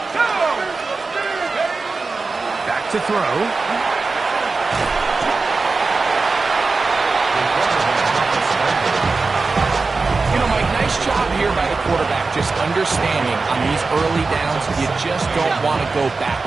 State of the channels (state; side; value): quieter; left; 4.0 dB